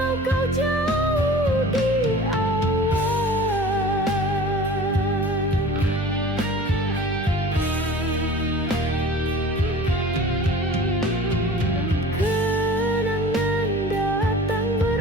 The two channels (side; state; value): both; normal; correlation 0.41